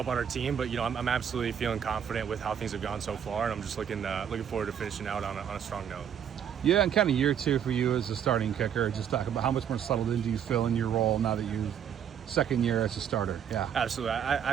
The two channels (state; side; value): quieter; left; 8.7 dB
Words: on our team. But I'm absolutely feeling confident with how things have gone so far, and I'm just looking forward to finishing out on a strong note. Yeah, and kind of year two for you as a starting kicker. Just talk about how much more settled in do you feel in your role now that you've second year as a starter? Yeah, absolutely.